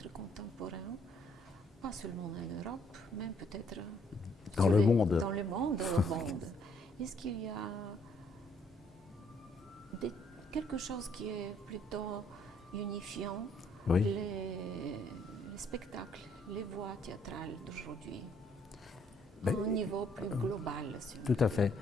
contemporain, pas seulement en Europe, mais peut-être dans le monde. Dans le monde. Est-ce qu'il y a quelque chose qui est plutôt unifiant, oui. les spectacles, les voies théâtrales d'aujourd'hui, au niveau plus global? Tout à fait.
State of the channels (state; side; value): normal; both; correlation 0.67